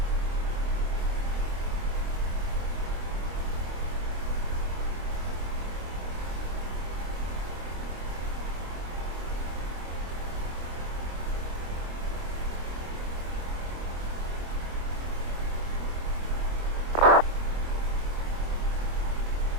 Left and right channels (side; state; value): left; late; 25 ms